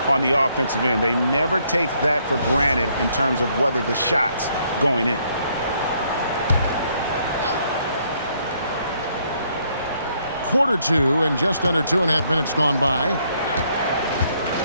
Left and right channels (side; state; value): both; inverted; correlation -0.70